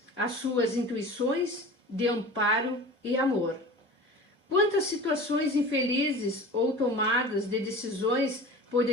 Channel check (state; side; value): normal; both; correlation 0.37